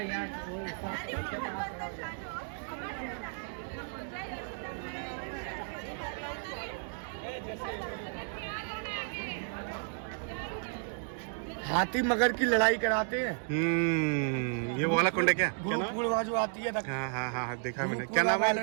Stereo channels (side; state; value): left; silent; 56 dB below the other